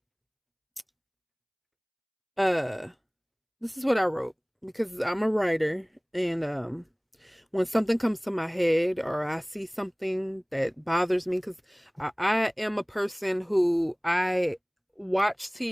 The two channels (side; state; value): both; identical; correlation 1.00